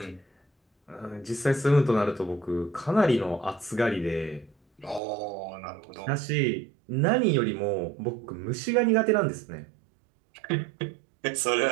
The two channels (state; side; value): drops out; left; at 5.0 s